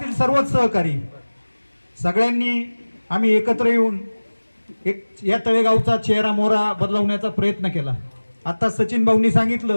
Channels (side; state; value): both; inverted; correlation -1.00